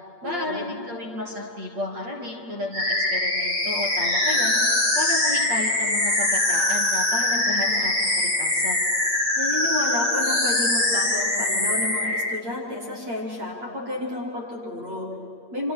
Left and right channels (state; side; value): late; left; 8.6 ms